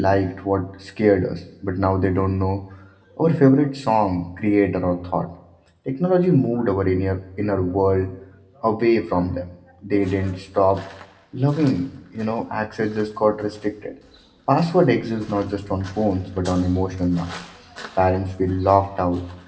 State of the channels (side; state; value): both; identical; correlation 1.00